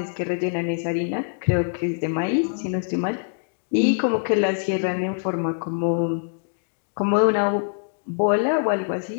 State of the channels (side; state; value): right; silent; digital silence